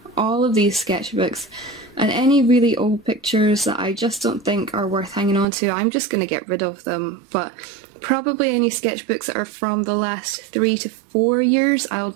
all of these sketchbooks, and any really old pictures that I just don't think are worth hanging on to, I'm just going to get rid of them. But probably any sketchbooks that are from the last 3 to 4 years, I'll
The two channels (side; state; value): left; drops out; at 5.5 s